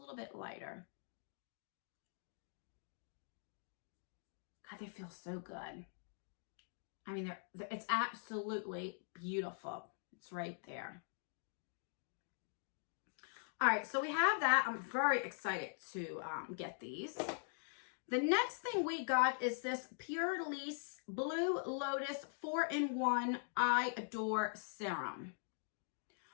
bit lighter. God, they feel so good. I mean, it's absolutely beautiful. It's right there. All right, so we have that. I'm very excited to get these. The next thing we got is this Pure Lease Blue Lotus 4-in-1 I Adore Serum,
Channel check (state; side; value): silent; right; digital silence